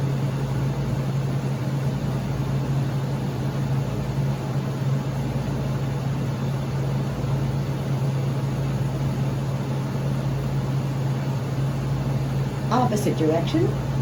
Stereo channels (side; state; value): both; identical; correlation 1.00